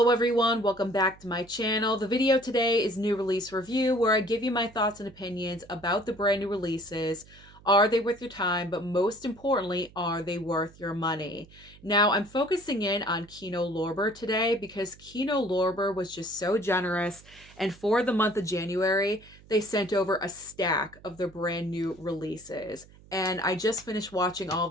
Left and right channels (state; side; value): noise; right; hum, 24 dB below the sound